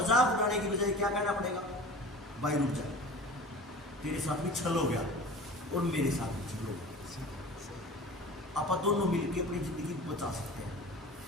उड़ाने की बजाय क्या कहना पड़ेगा? भाई रुक जा, तेरे साथ भी छल हो गया और मेरे साथ भी छल हो गया, आप दोनों मिलकर अपनी जिंदगी बचा सकते हैं।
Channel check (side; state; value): both; normal; correlation 0.38